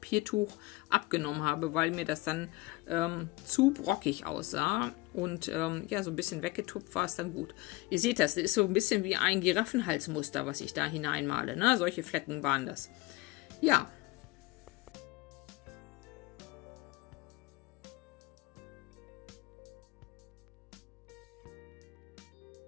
abgenommen habe, weil mir das dann zu brockig aussah. Und ja, so ein bisschen weggetupft war es dann gut. Ihr seht das ist so ein bisschen wie ein Giraffenhalsmuster, was ich da hineinmale. Ne? Solche Flecken waren das. Ja.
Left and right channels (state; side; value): quieter; right; 20.9 dB